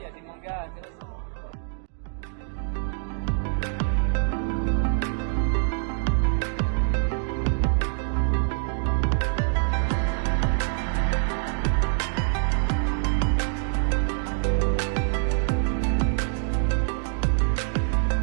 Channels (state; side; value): silent; left; digital silence